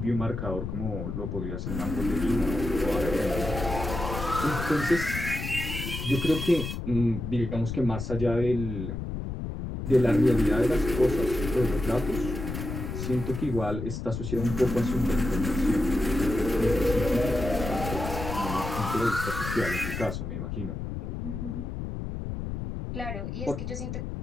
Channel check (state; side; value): noise; left; rumble, 5 dB below the sound